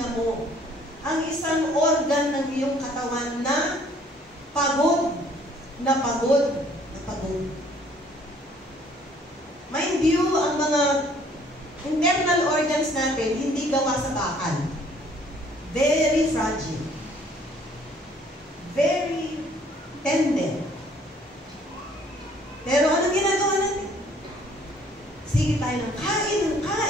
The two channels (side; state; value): both; normal; correlation 0.59